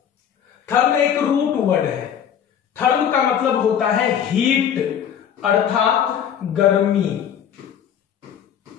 थर्म एक रूट वर्ड है। थर्म का मतलब होता है हीट अर्थात गर्मी।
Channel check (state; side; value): quieter; right; 8.8 dB